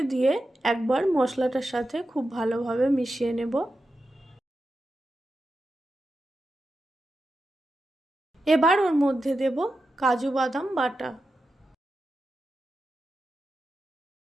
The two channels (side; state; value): both; normal; correlation 0.90